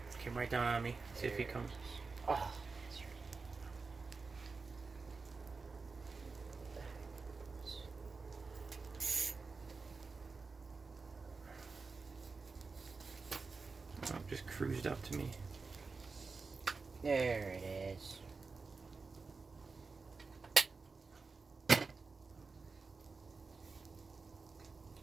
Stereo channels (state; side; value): quieter; left; 4.3 dB